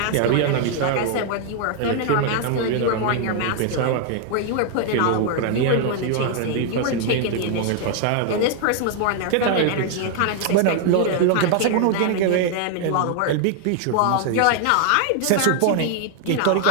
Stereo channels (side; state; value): both; different; correlation 0.00